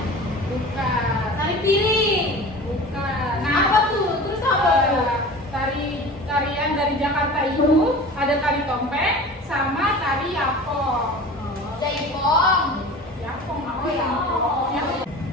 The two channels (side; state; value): both; normal; correlation 0.37